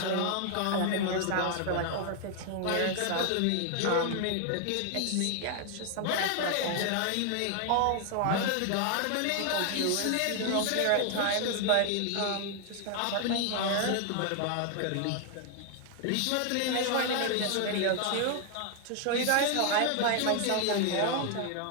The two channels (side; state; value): both; different; correlation 0.00